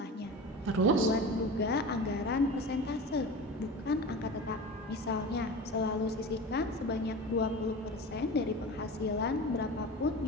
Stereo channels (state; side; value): normal; both; correlation 0.32